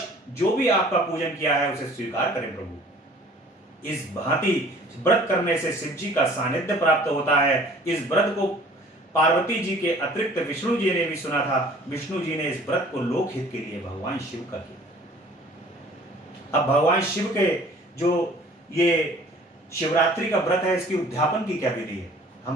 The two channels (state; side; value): normal; both; correlation 0.51